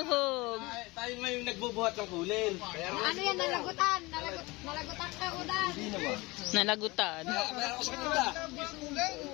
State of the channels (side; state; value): right; quieter; 23.1 dB